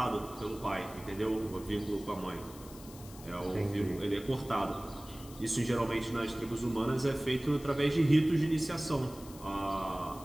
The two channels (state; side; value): noise; left; hiss, 18 dB below the sound